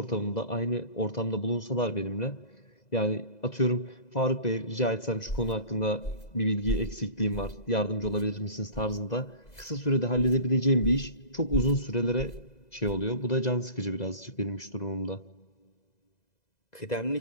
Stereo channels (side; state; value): right; late; 2.0 ms